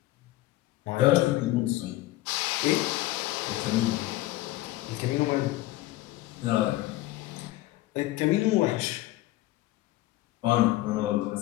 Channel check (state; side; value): quieter; right; 17.2 dB